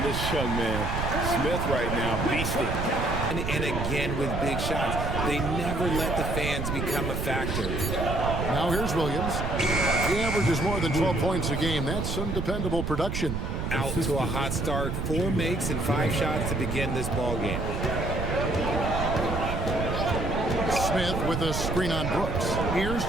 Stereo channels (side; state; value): right; noise; rumble, 2 dB below the sound